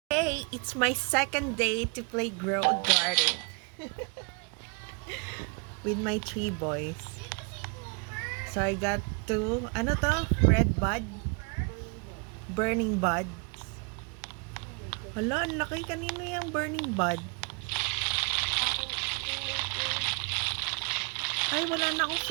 Today, it's my second day to play Grow a Garden with my 3 boys. So I got two, ano to? Red bud? Burning buds. Hala, ang laki. Kanino yung burning bud? Ay, wala na akong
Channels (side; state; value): left; quieter; 35.6 dB